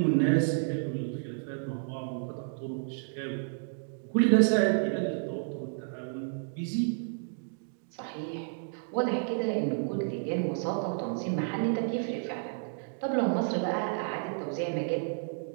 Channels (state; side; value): silent; left; digital silence